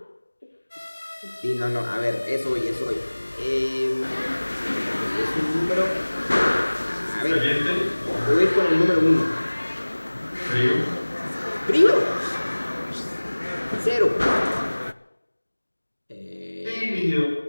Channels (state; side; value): inverted; both; correlation -1.00